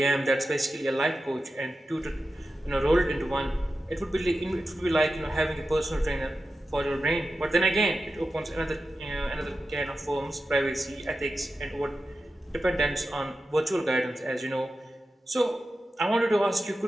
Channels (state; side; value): normal; both; correlation 0.92